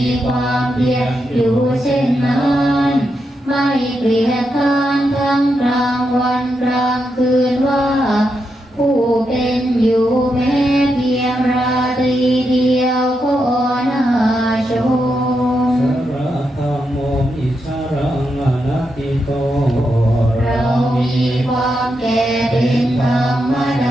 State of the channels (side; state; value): both; normal; correlation 0.84